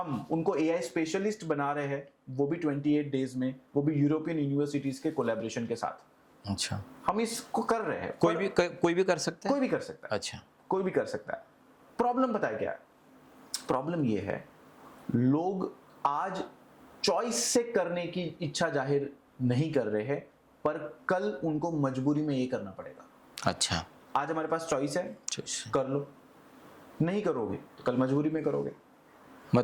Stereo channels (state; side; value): identical; both; correlation 1.00